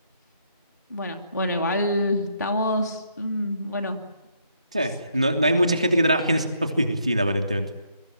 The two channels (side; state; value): both; inverted; correlation -0.72